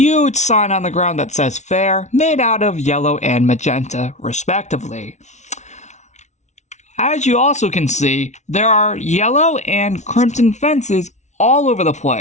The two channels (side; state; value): right; late; 0.33 ms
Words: sign on the ground that says Fair, made out of yellow and magenta, respectively. As you also can see, there are yellow and crimson fences all over the